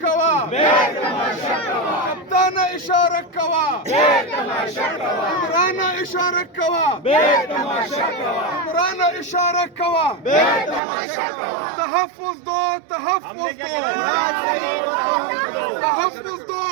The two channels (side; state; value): left; drops out; at 10.8 s